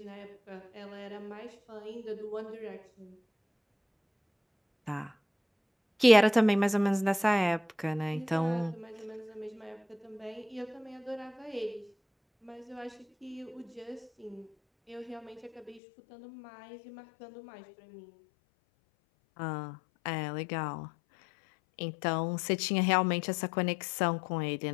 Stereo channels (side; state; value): right; drops out; at 15.8 s